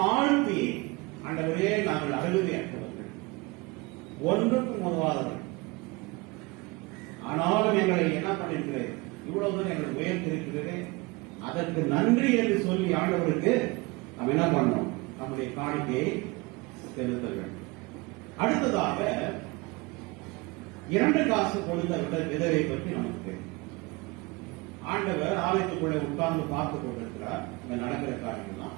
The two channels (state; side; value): quieter; left; 24.9 dB